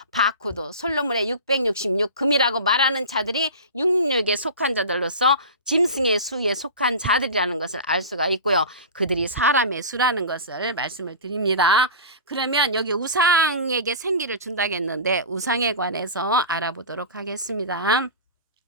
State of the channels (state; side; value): inverted; both; correlation -0.31